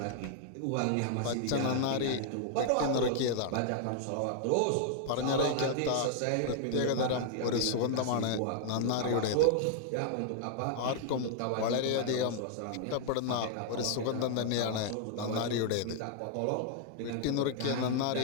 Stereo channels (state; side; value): different; both; correlation -0.01